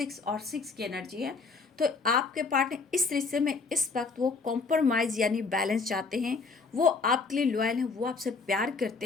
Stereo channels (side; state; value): right; quieter; 4.4 dB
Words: की एनर्जी है। तो आपके पार्टनर इस रिश्ते में इस वक्त वो कॉम्प्रोमाइज़ यानी बैलेंस चाहते हैं, वो आपके लिए लॉयल हैं, वो आपसे प्यार